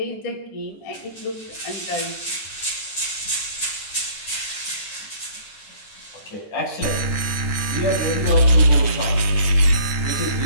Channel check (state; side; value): late; right; 9.2 ms